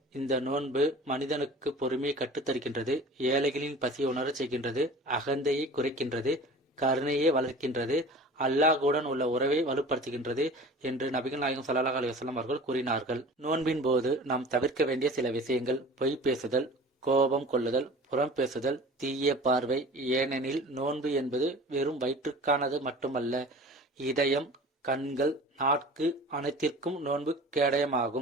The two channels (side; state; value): both; normal; correlation 0.41